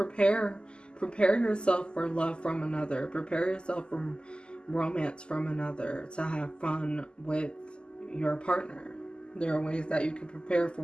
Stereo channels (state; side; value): late; right; 0.049 ms